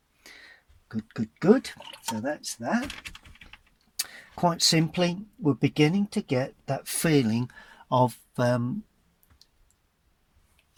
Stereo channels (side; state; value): both; identical; correlation 1.00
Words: Good. So that's that. Quite simply, we're beginning to get that feeling of